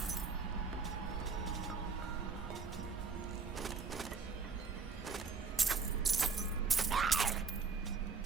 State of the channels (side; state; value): left; quieter; 4.9 dB